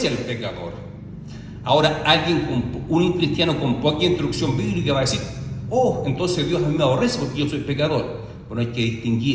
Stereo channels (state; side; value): identical; both; correlation 1.00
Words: al pecador. Ahora, un cristiano con poca instrucción bíblica va a decir: oh, entonces Dios a mí me aborrece porque yo soy pecador. Bueno, hay que